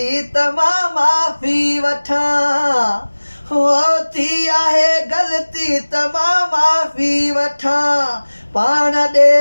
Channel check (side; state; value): both; inverted; correlation -1.00